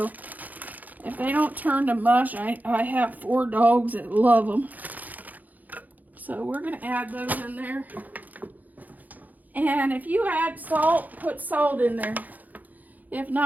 if they don't turn to mush, I have 4 dogs that love them. So we're going to add those in there. And if you add salt, put salt in there. If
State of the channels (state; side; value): late; left; 0.081 ms